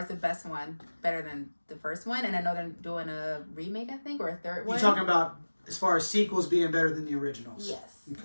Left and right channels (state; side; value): inverted; both; correlation -1.00